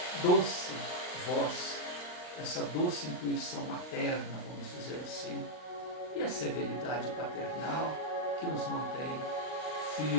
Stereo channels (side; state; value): right; late; 39 ms